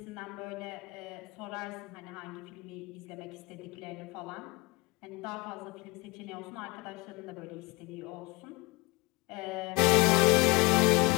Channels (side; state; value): right; quieter; 24.4 dB